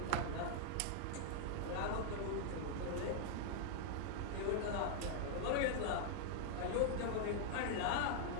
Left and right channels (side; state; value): both; different; correlation -0.01